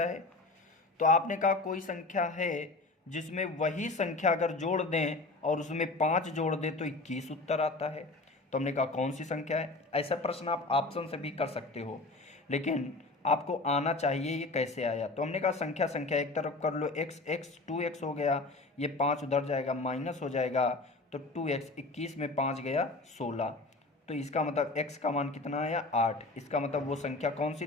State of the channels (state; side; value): quieter; right; 3.3 dB